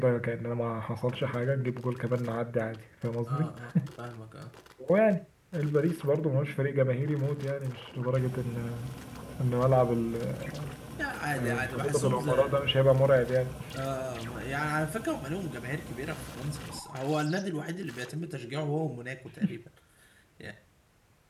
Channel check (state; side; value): identical; both; correlation 1.00